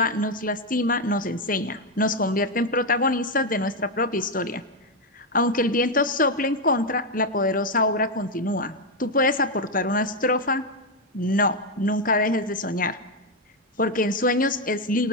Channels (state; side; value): normal; both; correlation 0.05